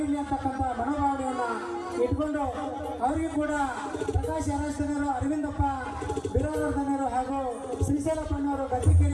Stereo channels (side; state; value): both; identical; correlation 1.00